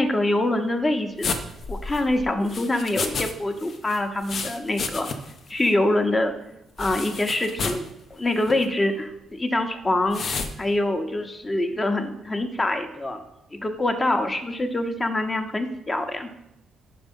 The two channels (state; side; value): normal; both; correlation 0.89